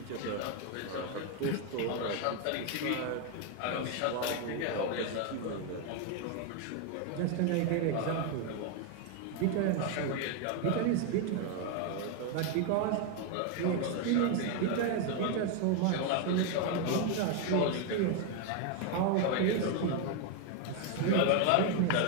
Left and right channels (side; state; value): both; different; correlation 0.01